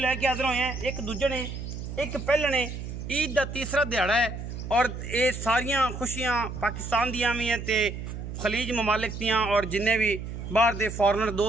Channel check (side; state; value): right; noise; hum, 8 dB below the sound